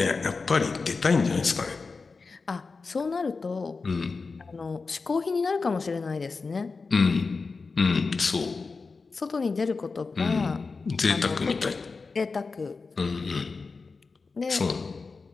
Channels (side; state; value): right; quieter; 4.3 dB